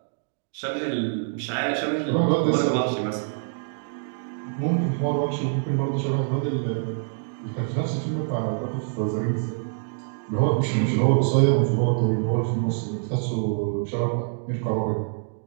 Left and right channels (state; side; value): silent; left; digital silence